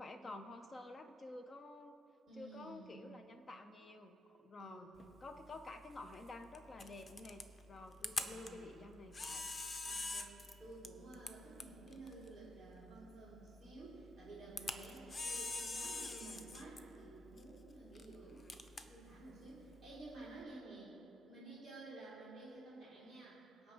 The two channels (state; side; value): normal; both; correlation 0.79